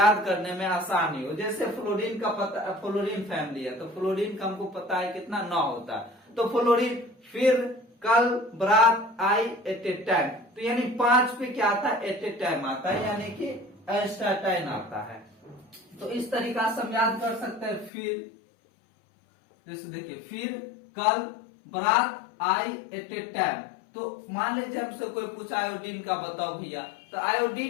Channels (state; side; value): drops out; right; at 17.9 s